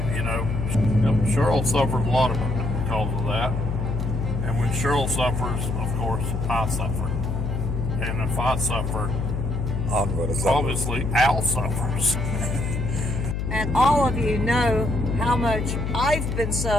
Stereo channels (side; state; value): left; noise; hum, 2 dB below the sound